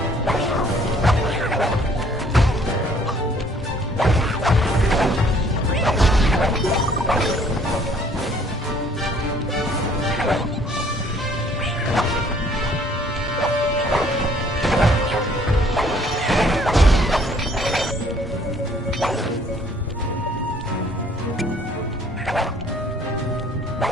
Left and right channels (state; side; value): normal; both; correlation 0.60